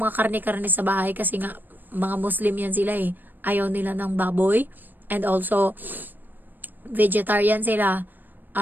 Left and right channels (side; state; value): left; late; 0.090 ms